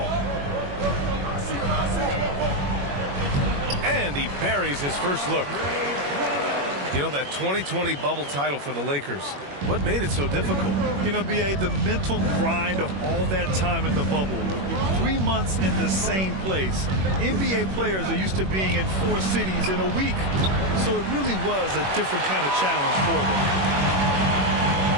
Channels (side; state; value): left; late; 21 ms